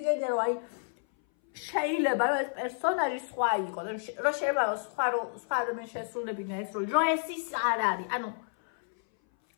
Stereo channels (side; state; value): right; silent; 58 dB below the other